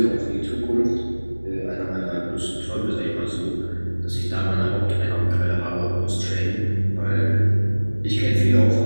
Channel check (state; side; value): inverted; both; correlation -1.00